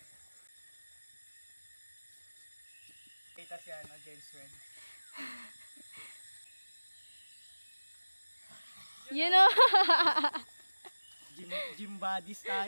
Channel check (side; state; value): both; inverted; correlation -1.00